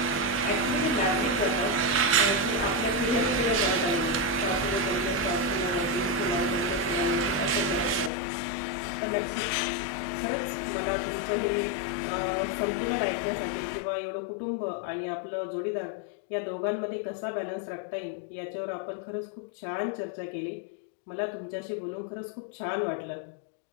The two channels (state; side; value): drops out; right; at 8.1 s